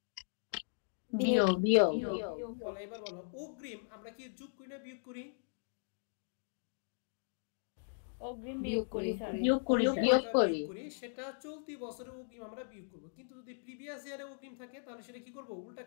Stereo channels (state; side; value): silent; right; digital silence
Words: বিয়োগ। বিয়োগ। বলো এবার বলো অগ্রিম আমরা কি যোগ করি না বিয়োগ করি? অগ্রিম বিয়োগ করি স্যার। বিয়োগ করি। বিয়োগ করি। সেটা চলতি বছরে অগ্রিম আমরা বিয়োগ করব। কিন্তু যদি প্রিভিয়াস ইয়ারে অগ্রিম থাকে তাহলে সেটা কি করব? উল্টা